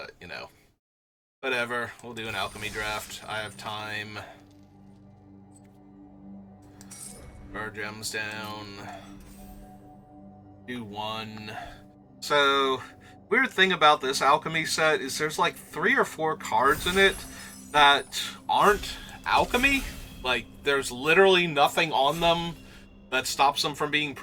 whatever. We'll do an alchemy draft. I have time. Our gems down. Do one. So, weird thing about this alchemy set is there's like 3 or 4 cards in it that aren't alchemy. Like, there's literally nothing on them that stops them from being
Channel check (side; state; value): both; identical; correlation 1.00